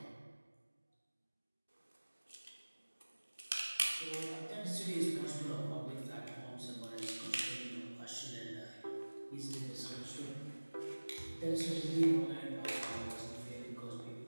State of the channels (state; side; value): inverted; both; correlation -1.00